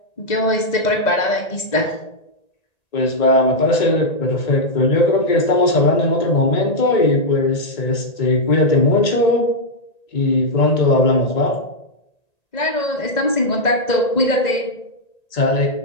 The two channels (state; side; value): late; right; 1.9 ms